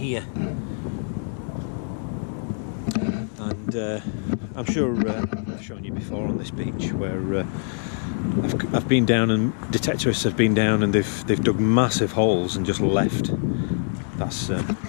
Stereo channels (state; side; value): silent; right; 62 dB below the other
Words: And I'm sure I've shown you before on this beach where I've been down, and detectorists have been down, and they've dug massive holes and just left. That's in